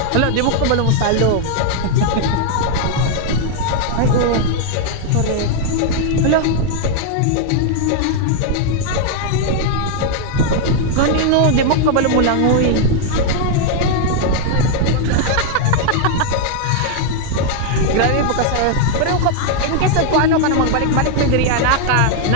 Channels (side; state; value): both; different; correlation 0.00